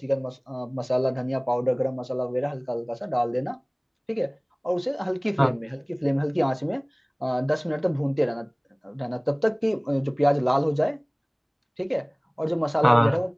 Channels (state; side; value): identical; both; correlation 1.00